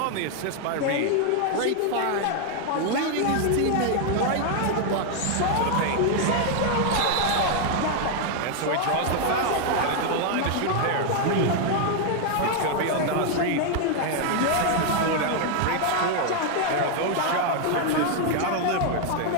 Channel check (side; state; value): both; different; correlation 0.00